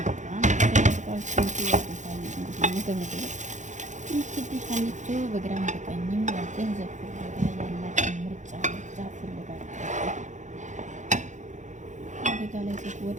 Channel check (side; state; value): left; late; 0.35 ms